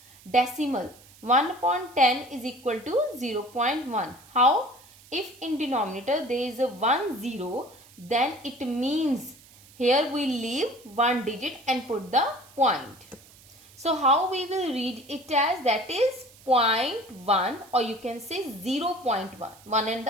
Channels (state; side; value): noise; right; hiss, 24 dB below the sound